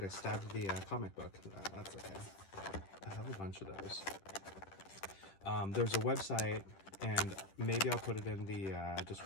I stabbed the comic book. That's okay. I have a bunch of those. There's a website, and maybe I'll put it in the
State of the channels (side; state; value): right; late; 10 ms